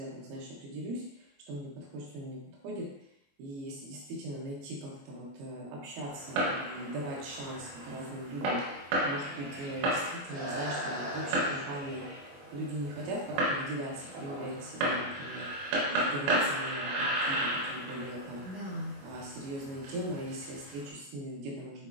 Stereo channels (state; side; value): late; left; 21 ms